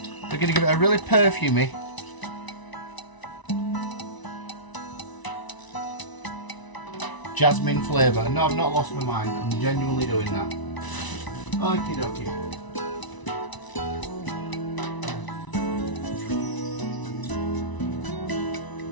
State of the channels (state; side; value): late; right; 1.0 ms